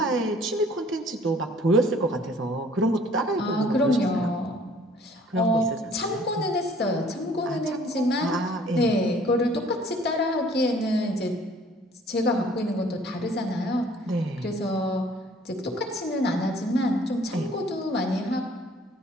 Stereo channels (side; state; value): both; normal; correlation 0.55